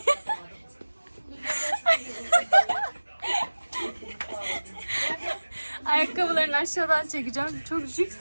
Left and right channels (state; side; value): inverted; both; correlation -1.00